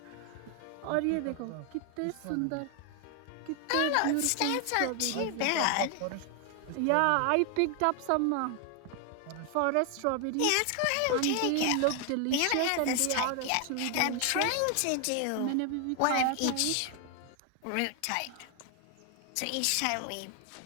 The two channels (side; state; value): both; different; correlation 0.00